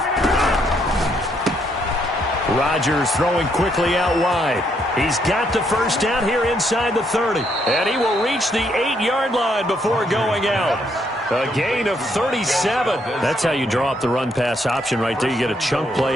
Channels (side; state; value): both; normal; correlation 0.73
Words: Rodgers throwing quickly out wide. He's got the first down here inside the 30. And he will reach the 8-yard line before going out. A gain of 37. That's how you draw up the run-pass option right there. You get a chunk